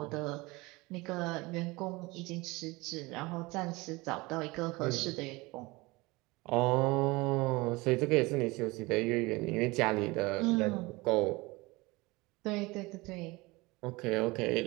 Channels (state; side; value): quieter; left; 23.0 dB